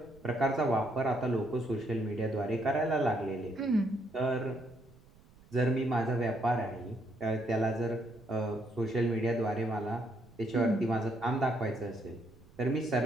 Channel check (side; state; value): right; noise; rumble, 25 dB below the sound